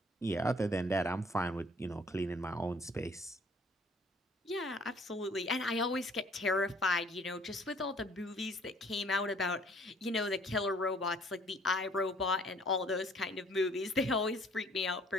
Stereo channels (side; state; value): both; normal; correlation 0.57